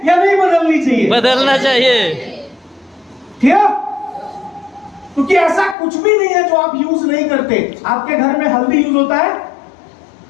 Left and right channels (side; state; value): right; drops out; at 5.8 s